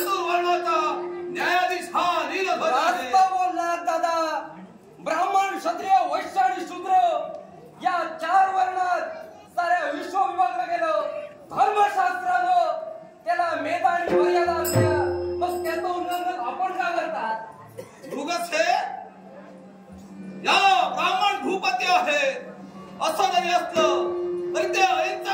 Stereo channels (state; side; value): identical; both; correlation 1.00